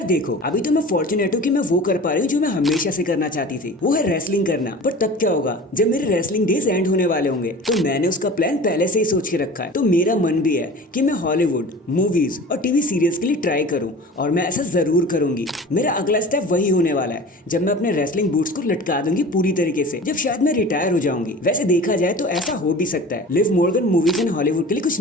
देखो, अभी तो मैं फॉर्चुनेट हूँ कि मैं वो कर पा रही हूँ जो मैं हमेशा से करना चाहती थी, वो है रेसलिंग करना। पर तब क्या होगा जब मेरे रेसलिंग डेज एंड होने वाले होंगे। तो मैंने उसका प्लान पहले से ही सोच के रखा है। तो मेरा मन भी है कि मैं हॉलीवुड मूवीज और टीवी सीरियल्स के लिए ट्राई करूँ, और मैं ऐसा जरूर करूंगी। मेरा अगला स्टेप वही होने वाला है जब मैं अपने रेसलिंग बूट्स को लटका दूंगी पूरी तरीके से, जब शायद मैं रिटायर हो जाऊंगी। वैसे देखा जाए तो ऐसा हो भी सकता है। Liv Morgan movies and Hollywood के लिए कुछ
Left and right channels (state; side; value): normal; both; correlation 0.38